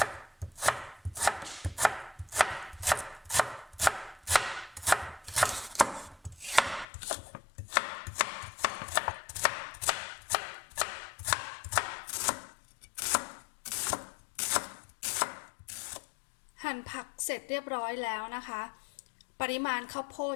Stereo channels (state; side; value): drops out; right; at 6.9 s